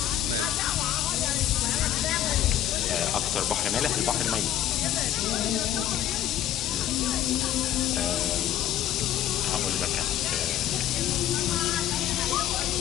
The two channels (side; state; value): right; quieter; 11.6 dB